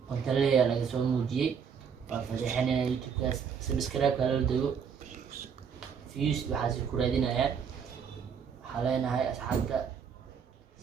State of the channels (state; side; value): quieter; left; 6.9 dB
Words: qonta leeyahay laga soo muujiyay waa fadeexinayna YouTube kaas subscribe kala dago views waxa si ku raadinayaan waxaa leenahay asxaabta